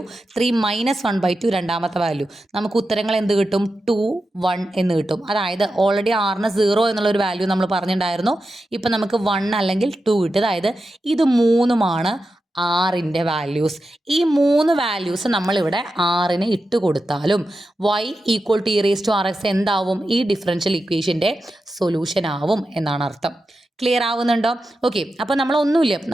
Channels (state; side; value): normal; both; correlation 0.90